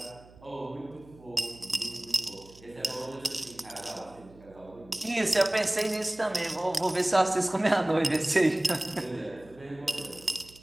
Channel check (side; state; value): right; noise; hum, 23 dB below the sound